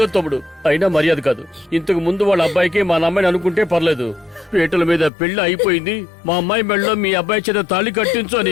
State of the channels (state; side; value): drops out; right; at 5.1 s